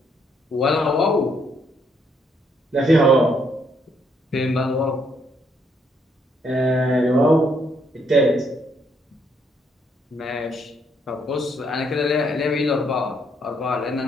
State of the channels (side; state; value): both; normal; correlation 0.71